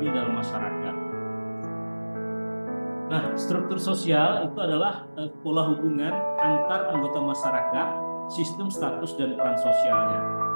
dalam masyarakat. Nah, struktur sosial itu adalah pola hubungan antar anggota masyarakat, sistem status dan peran sosialnya.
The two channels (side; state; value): both; inverted; correlation -1.00